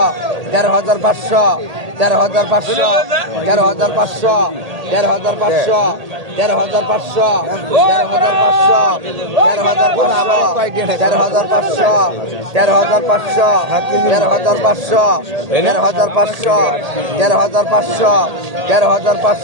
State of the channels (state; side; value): late; left; 1.8 ms